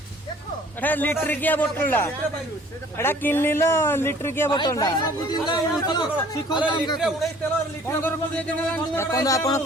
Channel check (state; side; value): normal; both; correlation 0.53